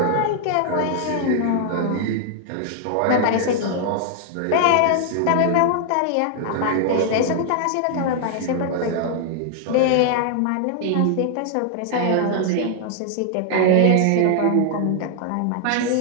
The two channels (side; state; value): both; different; correlation 0.00